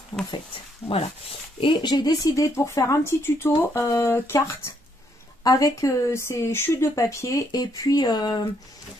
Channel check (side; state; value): both; normal; correlation 0.72